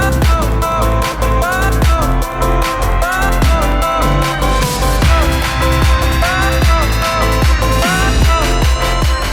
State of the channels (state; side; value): identical; both; correlation 1.00